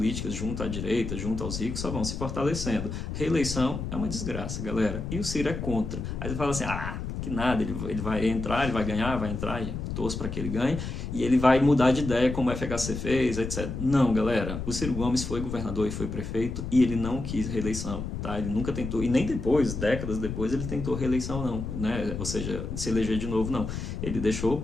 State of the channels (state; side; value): noise; left; rumble, 5 dB below the sound